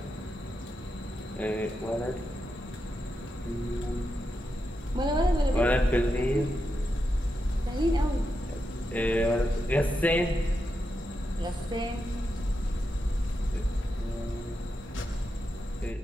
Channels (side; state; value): both; normal; correlation 0.86